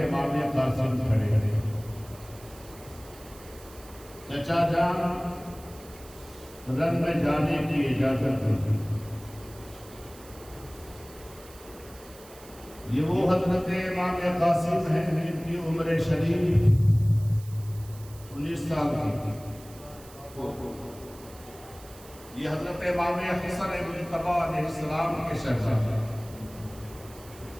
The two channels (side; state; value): right; noise; hiss, 21 dB below the sound